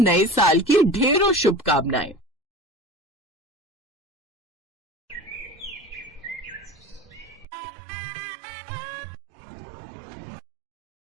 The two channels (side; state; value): left; drops out; at 7.5 s